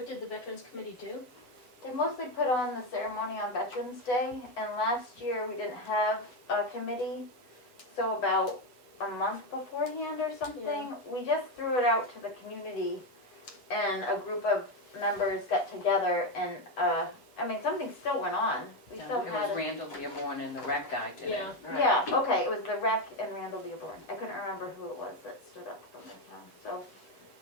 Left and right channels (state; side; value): late; right; 8.4 ms